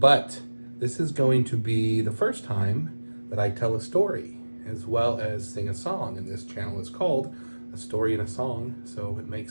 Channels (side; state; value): both; inverted; correlation -1.00